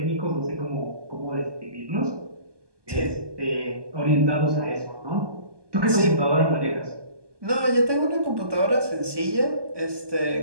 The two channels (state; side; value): late; left; 1.2 ms